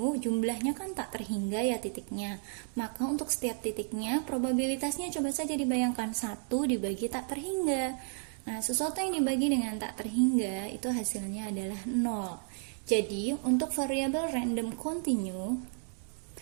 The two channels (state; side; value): silent; left; 56 dB below the other